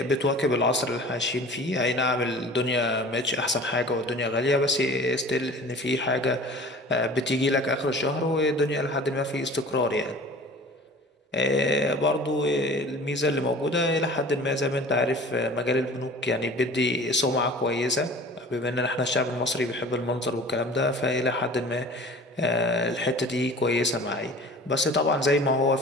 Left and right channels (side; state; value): both; normal; correlation 0.43